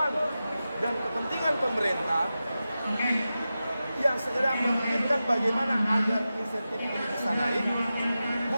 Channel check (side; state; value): both; inverted; correlation -0.93